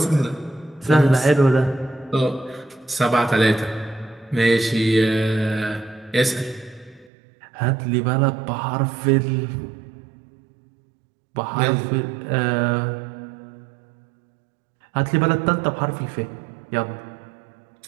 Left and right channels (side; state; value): left; drops out; at 7.1 s